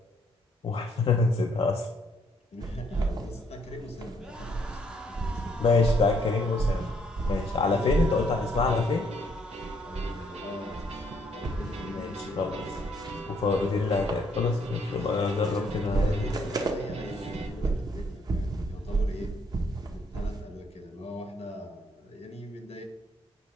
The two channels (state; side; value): normal; both; correlation 0.69